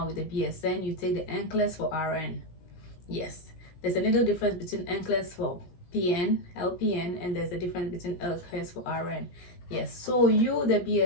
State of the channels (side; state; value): right; late; 17 ms